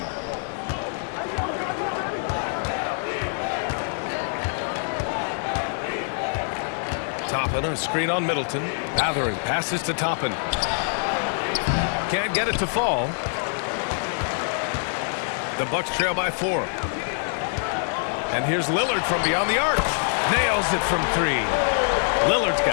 Toppin, a screen on Middleton. Matherin passes to Toppin. Can't get it to fall. The Bucks trail by 4. And here's Lillard from beyond the arc. Nails it from 3. Lillard's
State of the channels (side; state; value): right; silent; 62 dB below the other